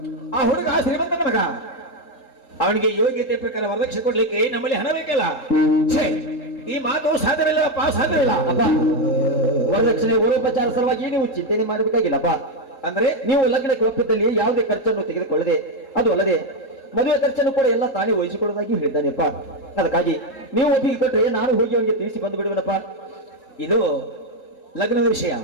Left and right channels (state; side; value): late; right; 4.7 ms